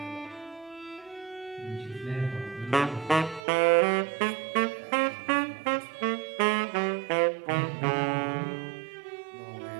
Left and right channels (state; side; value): drops out; left; at 3.4 s